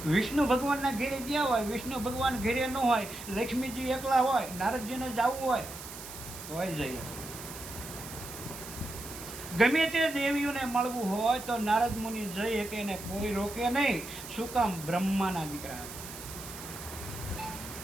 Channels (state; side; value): noise; right; hiss, 12 dB below the sound